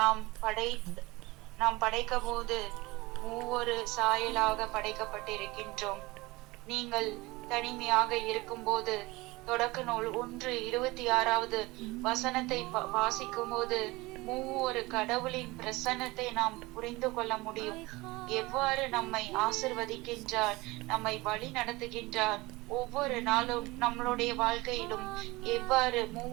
நாம் படைக்க போது மூவொரு சாயலாக படைக்கப்பட்டிருக்கின்றோம். நீங்கள் தனிமையாக இருக்கும் போது தொடக்க நூல் 1:26 வசனத்தை வாசிக்கும் போது மூவொரு கடவுளின் பிரசன்னத்தை நாம் புரிந்து கொள்ள முடியும். எவ்வாறு நம்மை ஆசிர்வதிக்கின்றார், நம்மை வழி நடத்துகின்றார், ஒவ்வொரு நாளும் நம்மளுடைய வாழ்க்கையிலும் எவ்வாறு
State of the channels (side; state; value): left; quieter; 21.9 dB